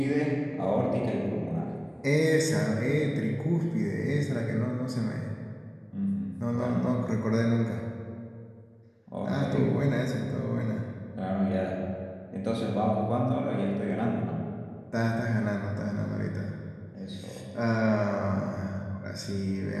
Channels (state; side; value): identical; both; correlation 1.00